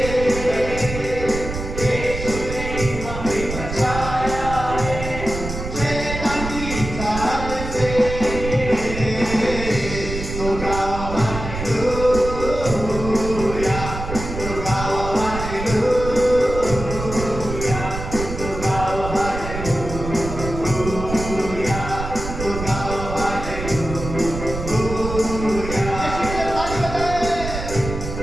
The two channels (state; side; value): noise; right; rumble, 7 dB below the sound